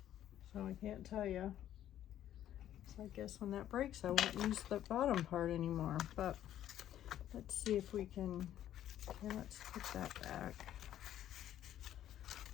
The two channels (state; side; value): quieter; right; 11.7 dB